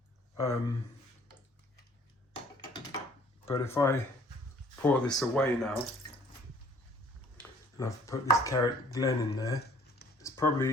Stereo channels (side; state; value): both; normal; correlation 0.57